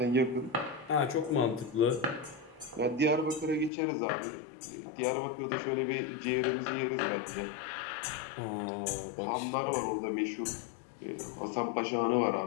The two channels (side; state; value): right; drops out; at 3.7 s